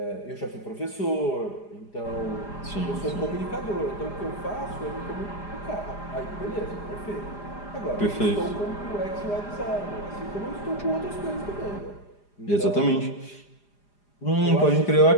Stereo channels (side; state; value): right; late; 4.9 ms